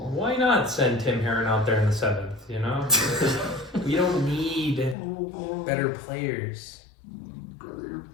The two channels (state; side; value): drops out; right; at 5.0 s